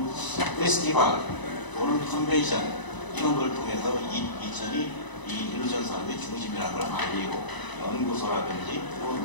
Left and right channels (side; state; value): right; late; 1.0 ms